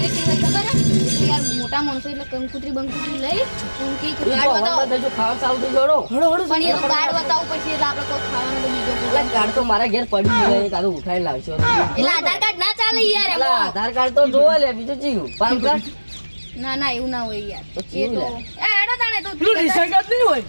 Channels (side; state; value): both; inverted; correlation -1.00